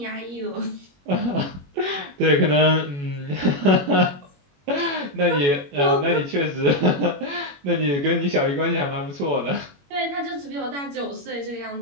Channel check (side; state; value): left; late; 21 ms